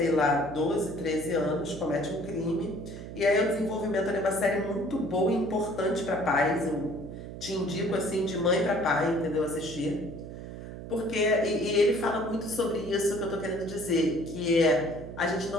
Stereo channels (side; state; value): right; noise; hum, 11 dB below the sound